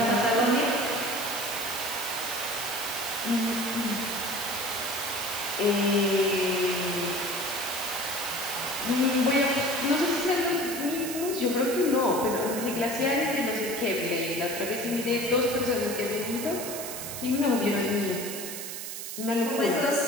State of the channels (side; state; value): right; noise; hiss, 7 dB below the sound